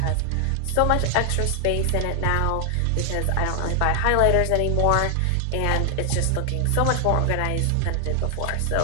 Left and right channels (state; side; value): different; both; correlation 0.00